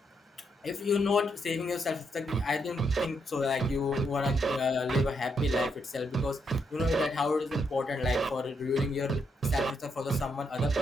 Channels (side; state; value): both; normal; correlation 0.78